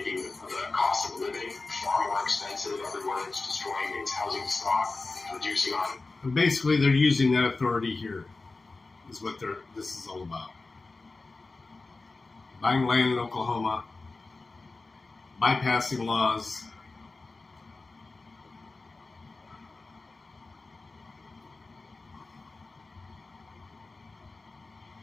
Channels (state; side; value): quieter; right; 3.6 dB